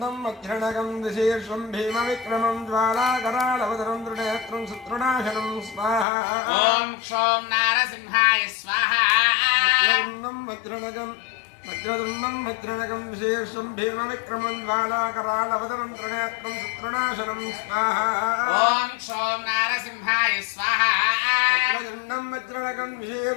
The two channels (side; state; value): right; drops out; at 6.1 s